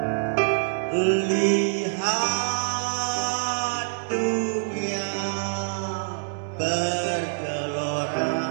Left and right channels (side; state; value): left; silent; digital silence